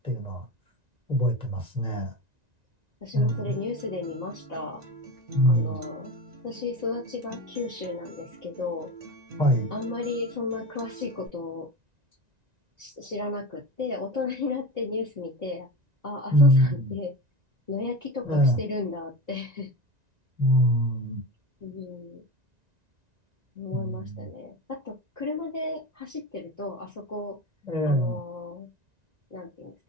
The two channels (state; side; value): late; left; 1.9 ms